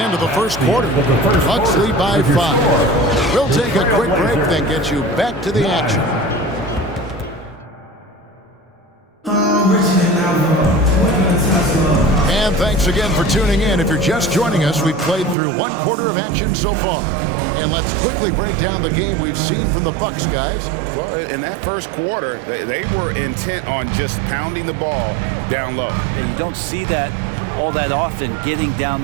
of the first quarter. Bucks lead by 5. We'll take a quick break, then get you back to the action. And thanks again for tuning in. If you're just joining us, we've played through 1 quarter of action so far. And let's quickly break down the game we've seen from the Bucks, guys. Well, in that first quarter, they were intent on just pounding the ball down low. Yeah, you don't see that all that often, getting down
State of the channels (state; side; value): drops out; left; at 15.4 s